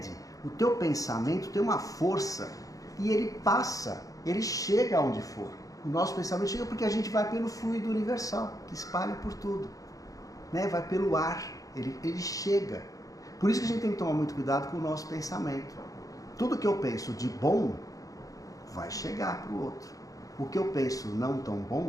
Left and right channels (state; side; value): late; right; 0.17 ms